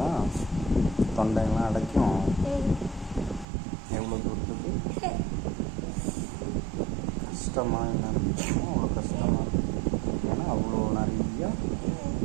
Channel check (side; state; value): left; drops out; at 3.5 s